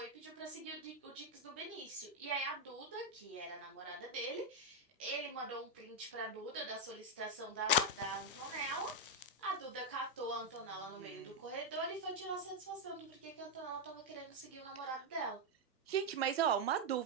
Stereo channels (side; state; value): both; normal; correlation 0.01